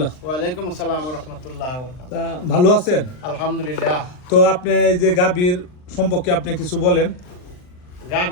ওয়ালাইকুম আসসালাম রহমতুল্লাহ। তা ভালো আছেন? আলহামদুলিল্লাহ। তো আপনি এই যে গাভীর সম্পর্কে আপনি কিছু বলেন।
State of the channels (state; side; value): late; right; 39 ms